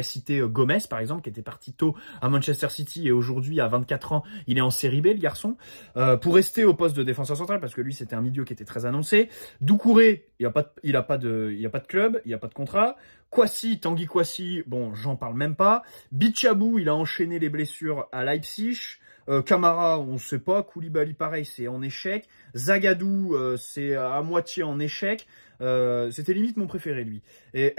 citer Gomez par exemple, qui était parti tôt à Manchester City et aujourd'hui à 24 ans, il est en série B le garçon. Pour rester au poste de défenseur central, parce que lui c'était un milieu qui était très annoncé. Doucouré, il a pas de club, il y a pas de contrat. Kouassi, Tanguy Kouassi, bon j'en parle même pas. Bichabou, il a enchaîné les blessures à Leipzig. Camara, on ne sait pas. Koulibaly, pareil, c'est en échec. Zagadou, c'est à moitié en échec. C'était limite mon préféré, lui. Et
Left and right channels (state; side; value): inverted; both; correlation -1.00